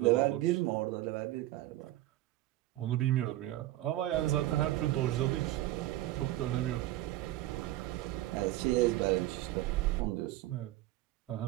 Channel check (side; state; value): left; quieter; 15.9 dB